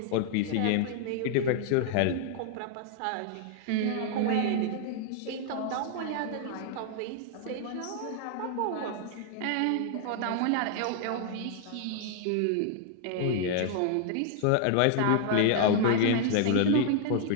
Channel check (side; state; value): both; different; correlation 0.00